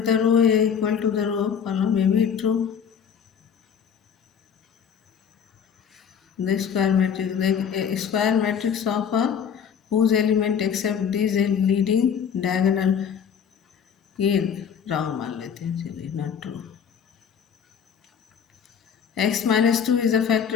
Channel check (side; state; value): right; quieter; 7.5 dB